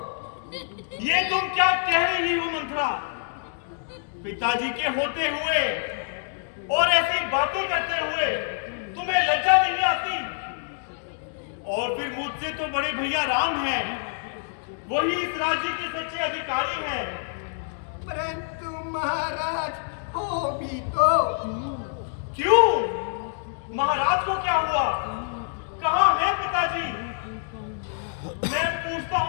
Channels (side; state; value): right; silent; digital silence